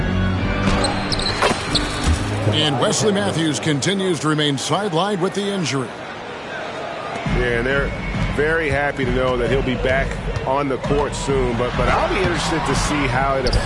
And Wesley Matthews continues to remain sidelined with the injury. Yeah, and they're very happy to know that he'll be back on the court soon. But I'll be interested to see how it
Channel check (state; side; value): identical; both; correlation 1.00